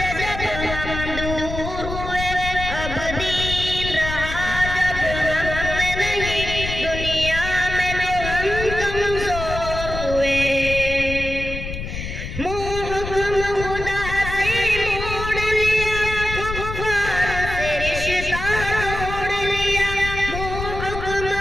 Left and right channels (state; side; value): noise; left; rumble, 7 dB below the sound